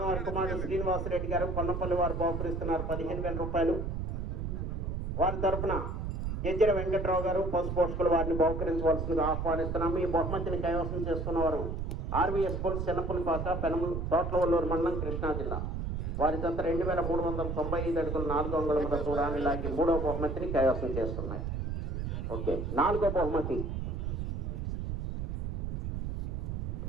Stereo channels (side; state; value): right; noise; rumble, 2 dB below the sound